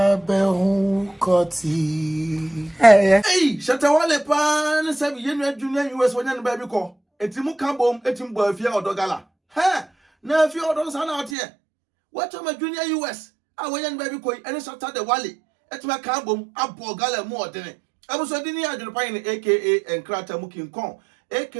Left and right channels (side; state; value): left; drops out; at 11.4 s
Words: behu koti. Hey, Shatta Wale pan sabi yenu junior US wanyan baby ko. Etimu kambom etim bo Efia Odo gala. Ha, na Efia Odo sana out here. What am a junior US? I wanyan baby ko ene Shatta Wale. Etima kambom abo gala mu odene. Abuso dini AdwenepaheneTv aka Enkrata Mukin Kon